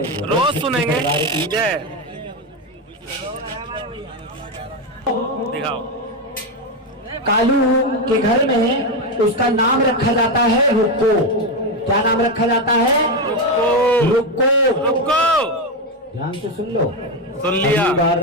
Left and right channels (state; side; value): normal; both; correlation 0.10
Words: रोज सुनेंगे। जय। दिखाओ। कालू के घर में उसका नाम रखा जाता है रुक्को। क्या नाम रखा जाता है? रुक्को। रुको। ध्यान से सुन लो। सुन लिया। अगली बार